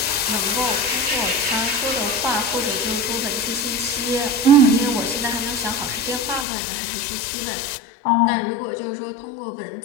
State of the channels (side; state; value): right; drops out; at 6.5 s